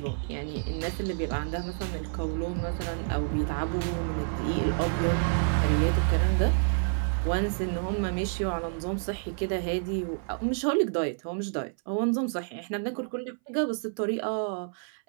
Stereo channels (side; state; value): left; silent; 59 dB below the other